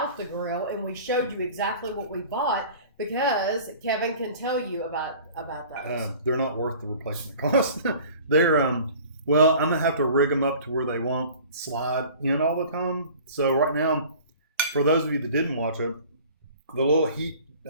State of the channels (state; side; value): inverted; both; correlation -0.45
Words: the grill, and we showed you exactly what we bought, because Kevin can tell you about those. They're not worth the replacement cost. They're well, I'm gonna have to rig them up to where they won't slide in all the time. So right now, for those of you that didn't watch it, the little heat